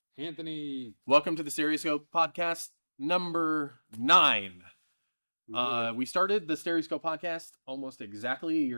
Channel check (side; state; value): both; inverted; correlation -1.00